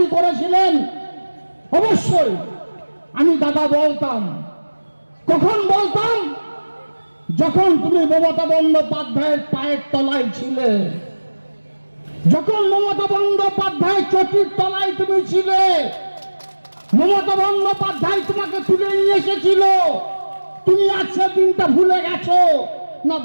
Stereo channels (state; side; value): inverted; both; correlation -1.00